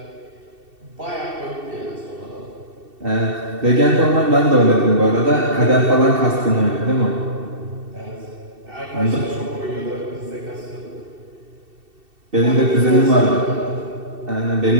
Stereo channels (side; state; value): left; late; 2.7 ms